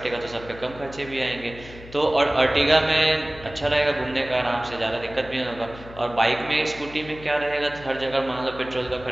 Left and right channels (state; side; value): noise; left; hum, 17 dB below the sound